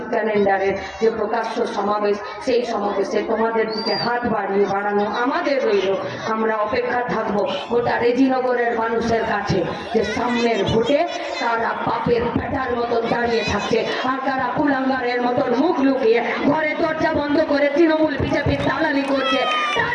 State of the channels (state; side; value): identical; both; correlation 1.00